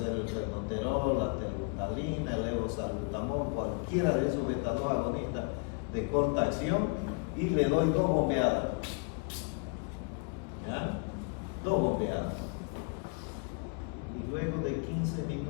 el penoterol, la telbutalina, el levosalbutamol, cualquiera de esos beta-2 agonistas de corta acción, y le doy 2 bombeadas. ¿Ya? 2 bombeadas. Y luego de 15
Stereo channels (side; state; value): right; quieter; 37.0 dB